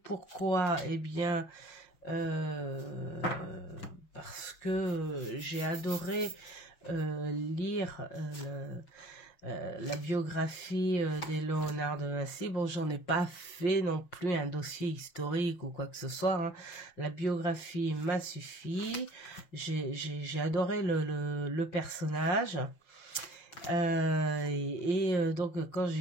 pourquoi? Eh bien, parce que j'ai adoré lire la biographie de Léonard de Vinci. Bon, j'en ai pas fait non plus un dossier historique ou quoi que ce soit, hein. La biographie m'a suffi. J'ai adoré le personnage. Donc, quand j'ai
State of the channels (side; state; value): right; late; 5.6 ms